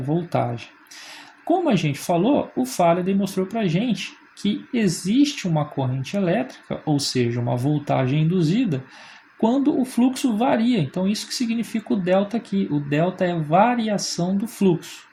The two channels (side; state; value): both; identical; correlation 1.00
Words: voltagem. Como a gente falou, o Faraday mostrou para a gente que existe uma corrente elétrica, ou seja, uma voltagem induzida, quando o fluxo varia. Então, isso que significa o delta aqui. O delta é variação do fluxo.